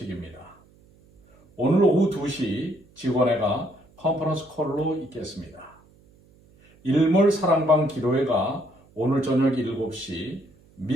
오늘 오후 2시 직원회가 컨퍼런스 콜로 있겠습니다. 일몰 사랑방 기도회가 오늘 저녁 7시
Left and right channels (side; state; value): right; noise; hum, 29 dB below the sound